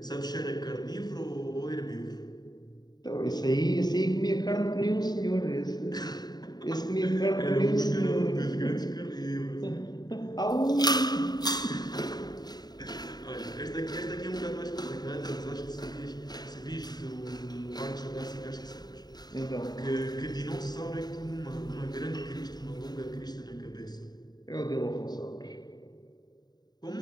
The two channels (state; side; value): late; right; 0.20 ms